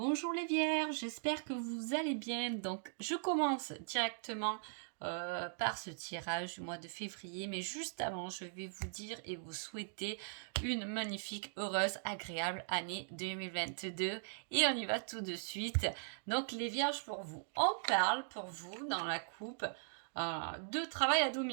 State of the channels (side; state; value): left; silent; digital silence